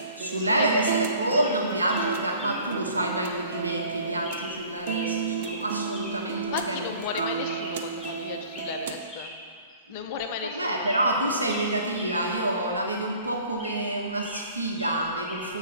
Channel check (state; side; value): inverted; both; correlation -0.50